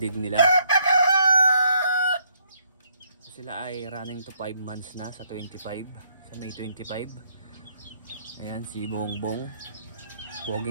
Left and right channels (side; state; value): both; inverted; correlation -0.70